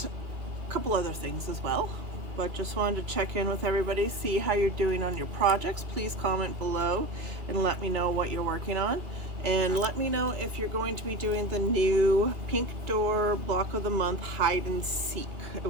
a couple other things as well, but just wanted to check in with everybody, see how you're doing on your projects. Please comment below and let me know what you're working on, and let me know if you're going to be doing the new Pink Door Block of the Month hide and seek. It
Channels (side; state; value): left; late; 2.3 ms